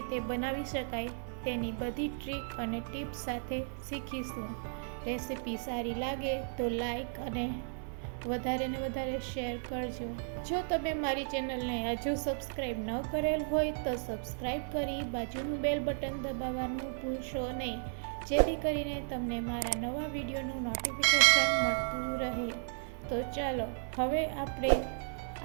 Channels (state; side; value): silent; left; digital silence